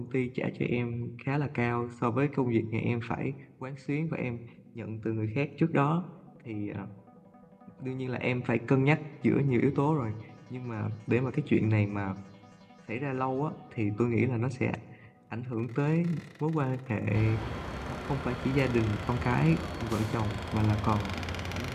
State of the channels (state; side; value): identical; both; correlation 1.00